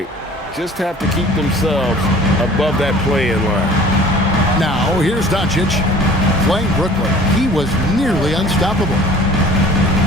Just have to keep themselves above that play-in line. Now, here's Doncic playing Brooklyn. He was nearly unstoppable.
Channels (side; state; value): both; normal; correlation 0.48